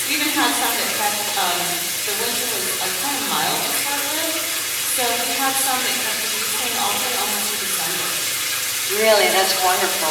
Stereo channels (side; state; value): both; identical; correlation 1.00